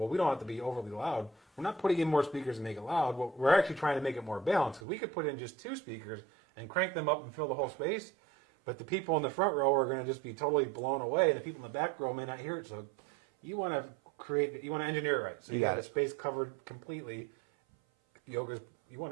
we don't have to be overly loud. We're not putting in more speakers to make it loud. We're actually trying to make it more balanced because we could put in just 2 speakers and crank them up and fill the whole space, but the people in the front row are going to just be totally blown away, and the people in the back row may not hear it. So you want to engineer it right. So you got the space covered completely. Yoga's, you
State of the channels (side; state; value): left; drops out; at 4.8 s